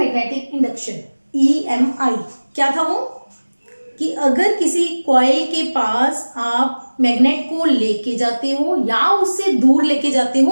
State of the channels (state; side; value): inverted; both; correlation -1.00